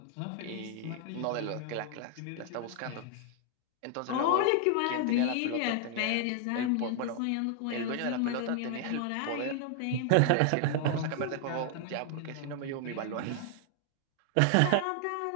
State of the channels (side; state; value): both; different; correlation 0.00